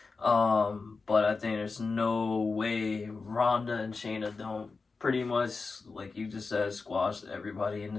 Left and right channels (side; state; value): right; quieter; 4.3 dB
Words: But I think there's no way Ronda and Shayna don't pretty much, like you just said, squash everybody in